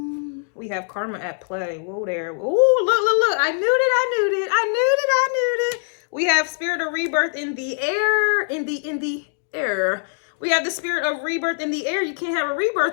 We have karma at play. Whoa there. Oh, look. I knew it. We have spirit of rebirth in the air. In the air. We have the spirit of rebirth in the air. You can't have a rebirth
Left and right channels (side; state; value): right; silent; 63 dB below the other